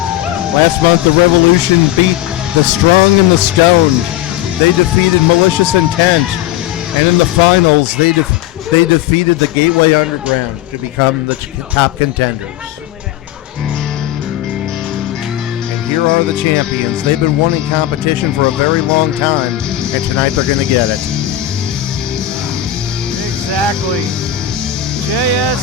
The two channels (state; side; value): quieter; right; 12.5 dB